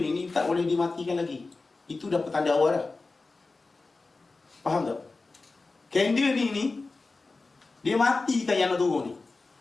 ni tak boleh dimatikan lagi. Itu dah petanda awal dah. Faham tak? Candle ni dia matikan yang nak turun ni,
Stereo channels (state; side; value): quieter; right; 3.7 dB